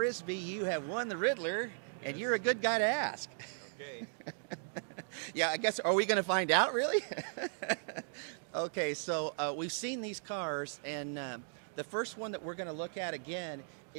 you have won the Ridler, Yes. and you're a good guy to ask. Okay. Yeah, I guess, are we going to find out, really? Yeah. Okay, so we've seen these cars, and the first one that we're going to look at again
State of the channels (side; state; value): left; silent; digital silence